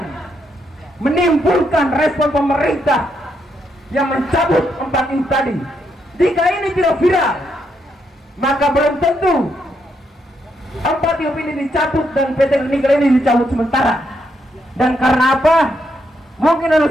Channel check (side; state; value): both; normal; correlation 0.78